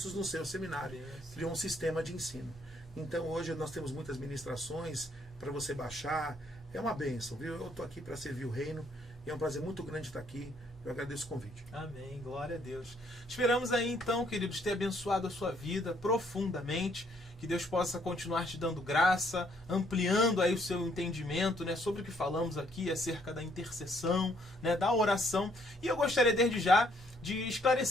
no seu seminário. Criou um sistema de ensino. Então hoje nós temos muitas ministrações para você baixar. É uma bênção, viu? Eu estou aqui para servir o reino e é um prazer muito grande estar aqui. Eu agradeço o convite. Amém, glória a Deus. Esperamos aí então, queridos, ter abençoado a sua vida profundamente. Que Deus possa continuar te dando graça, ampliando aí o seu entendimento, né, sobre o que falamos aqui acerca da intercessão, né, da oração. E eu gostaria desde já de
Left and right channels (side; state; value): both; normal; correlation 0.68